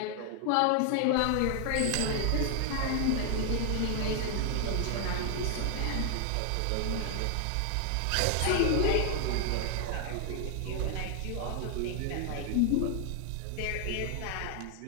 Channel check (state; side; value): different; both; correlation 0.00